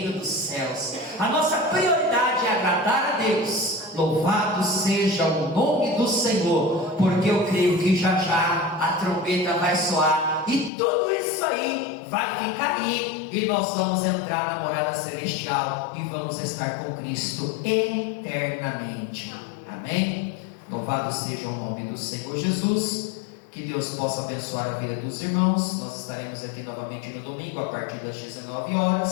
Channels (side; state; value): right; drops out; at 10.7 s